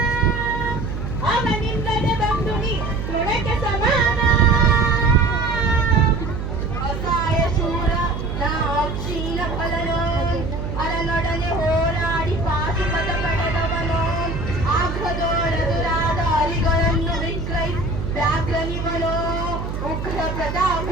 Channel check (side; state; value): right; noise; hum, 5 dB below the sound